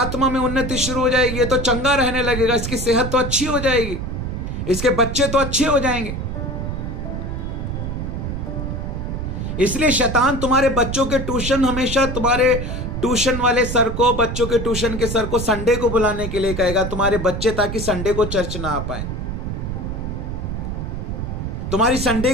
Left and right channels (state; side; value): noise; right; rumble, 4 dB below the sound